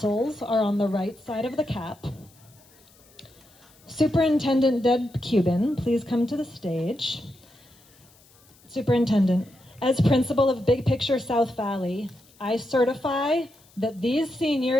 are on the right side of the cap. Superintendent Deb Cuban, please come to the stage. Superintendent, as principal of Big Picture South Valley, I certify that these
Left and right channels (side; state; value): left; noise; hiss, 29 dB below the sound